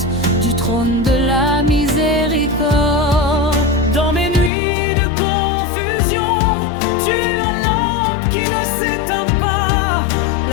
du trône de la miséricorde. Dans mes nuits de confusion, tu es la lampe qui ne s'éteint pas,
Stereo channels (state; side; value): drops out; right; at 4.5 s